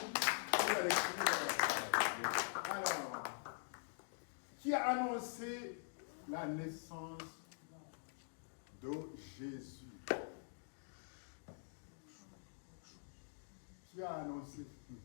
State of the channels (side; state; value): right; silent; digital silence